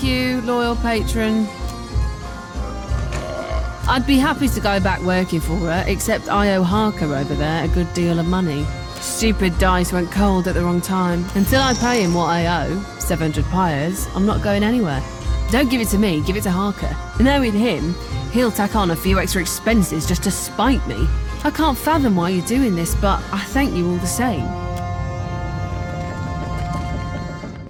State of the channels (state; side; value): identical; both; correlation 1.00